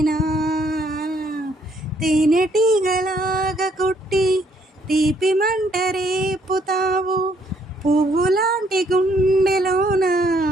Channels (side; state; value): both; normal; correlation 0.68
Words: తేనెటీగలాగా కుట్టి తీపి మంట రేపుతావు. పువ్వులాంటి గుండెలోన